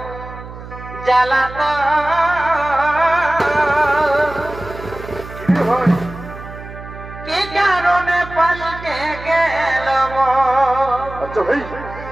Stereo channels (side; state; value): right; noise; hum, 13 dB below the sound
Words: জ্বালাতন কি কারণে পাল্টে গেল আচ্ছা ভাই